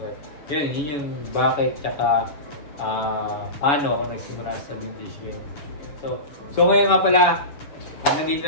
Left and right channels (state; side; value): late; right; 7.1 ms